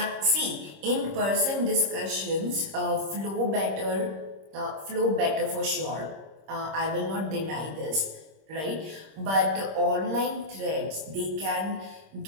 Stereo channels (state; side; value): late; left; 26 ms